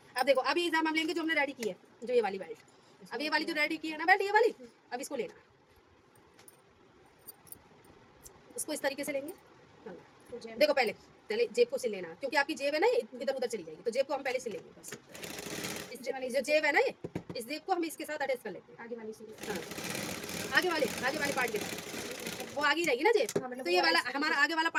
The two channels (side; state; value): both; identical; correlation 1.00